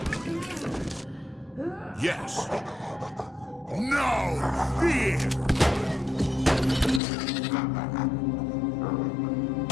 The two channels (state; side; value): drops out; right; at 7.0 s